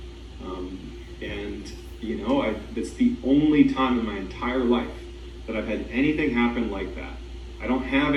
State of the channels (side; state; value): both; identical; correlation 1.00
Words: It's the only time in my entire life that I've had anything happen like that. I don't have